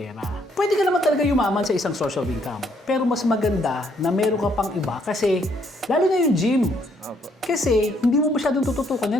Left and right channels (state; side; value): normal; both; correlation 0.69